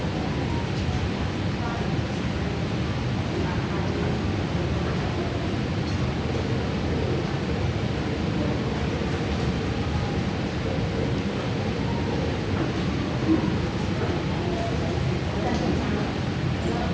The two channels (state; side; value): identical; both; correlation 1.00